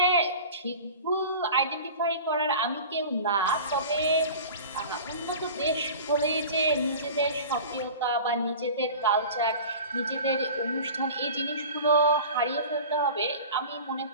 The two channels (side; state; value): both; inverted; correlation -0.38